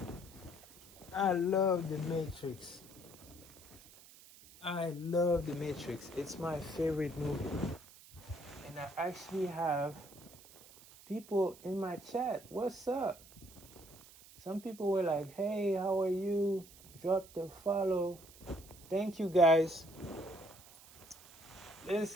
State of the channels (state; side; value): noise; right; hiss, 21 dB below the sound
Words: I love the Matrix. It's my favorite movie. And I actually have people in my chat. What's up? Some people were like, hey, how are you? Drop the follow. Thank you, guys.